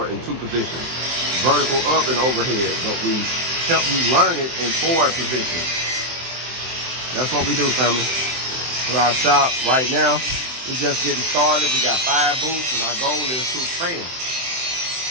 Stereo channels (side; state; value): left; late; 23 ms